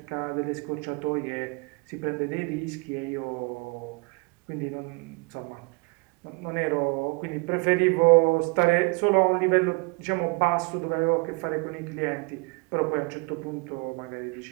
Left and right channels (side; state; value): left; quieter; 29.8 dB